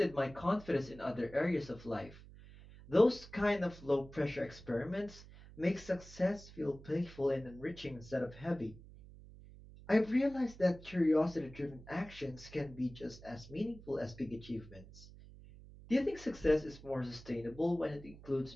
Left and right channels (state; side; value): noise; right; hum, 18 dB below the sound